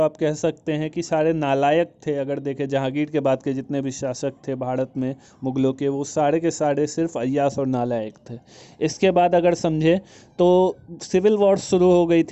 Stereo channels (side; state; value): both; identical; correlation 1.00